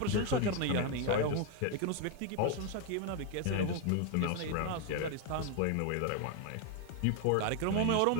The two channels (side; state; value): both; different; correlation 0.01